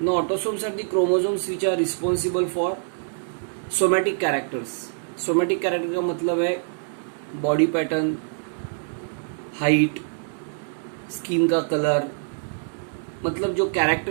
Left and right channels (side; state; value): left; silent; digital silence